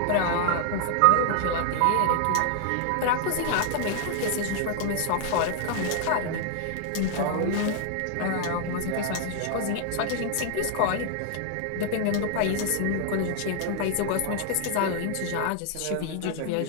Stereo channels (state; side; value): different; both; correlation 0.00